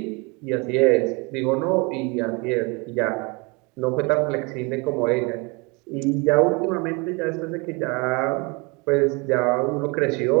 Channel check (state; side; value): quieter; left; 28.7 dB